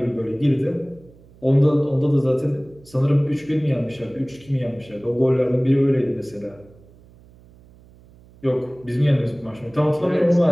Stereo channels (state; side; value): noise; right; hum, 25 dB below the sound